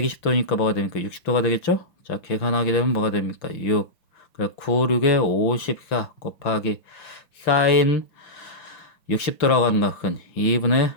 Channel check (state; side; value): late; right; 5.9 ms